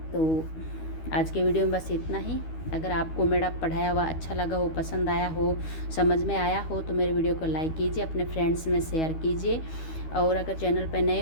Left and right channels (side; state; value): right; late; 12 ms